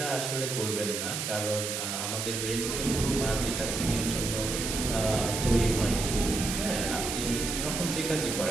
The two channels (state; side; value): noise; right; hiss, 3 dB below the sound